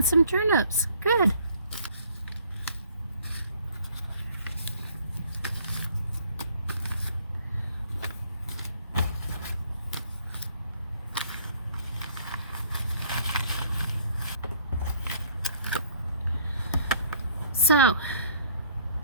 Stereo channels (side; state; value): both; inverted; correlation -0.59